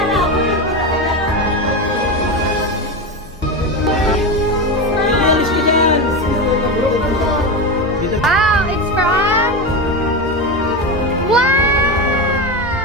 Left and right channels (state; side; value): normal; both; correlation 0.18